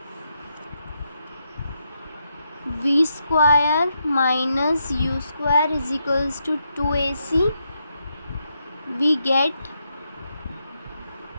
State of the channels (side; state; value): both; inverted; correlation -0.81